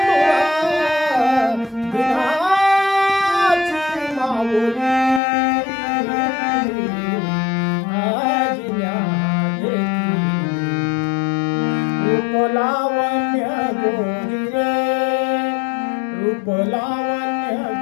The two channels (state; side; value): drops out; right; at 5.2 s